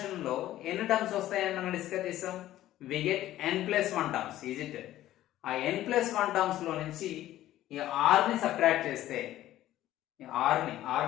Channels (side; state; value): right; quieter; 14.0 dB